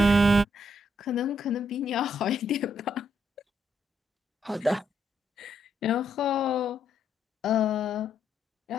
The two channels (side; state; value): both; normal; correlation 0.75